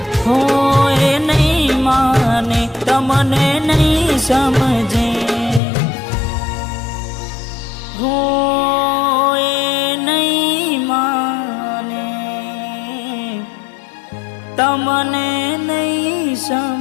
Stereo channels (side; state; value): right; drops out; at 5.6 s